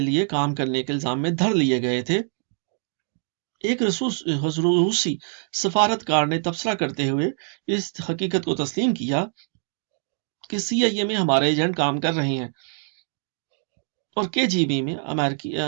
لیے کام کرنے کے الزام میں دھر لیے گئے تھے، ایک روسی سفارتکار نے تبصرہ کرتے ہوئے اس حقیقت کو تسلیم کیا کہ CIA میں ہمارے ایجنٹ کام کر رہے ہیں اور KGB میں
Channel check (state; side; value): silent; left; 56 dB below the other